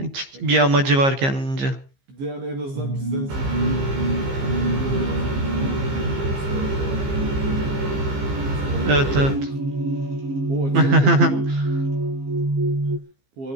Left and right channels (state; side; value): late; left; 15 ms